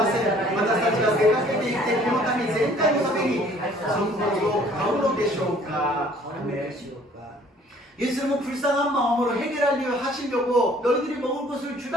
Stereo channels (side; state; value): both; normal; correlation 0.56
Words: せん。私たちが出かけていってこの民全体のためにそのことを買うのでしょうか。 예수님은 불쌍한 마음으로 해결하려 하시려고 너희들이 먹을 것을